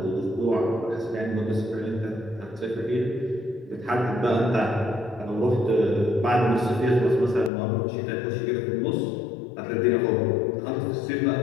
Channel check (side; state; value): right; drops out; at 7.5 s